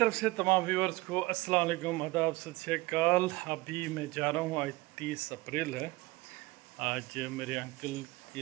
से तमाम व्यूअर्स को अस्सलाम वालेकुम, आदाब, सत श्री अकाल। अभी मैं जा रहा हूँ, आज 30 अप्रैल है। आज मेरे अंकल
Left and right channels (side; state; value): left; quieter; 21.4 dB